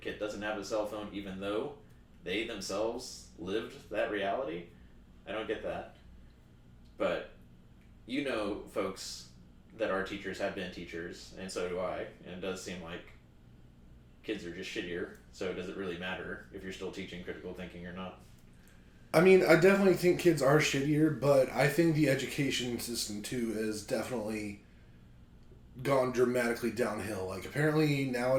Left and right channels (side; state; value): both; identical; correlation 1.00